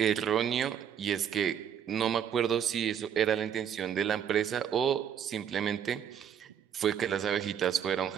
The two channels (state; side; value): quieter; left; 8.6 dB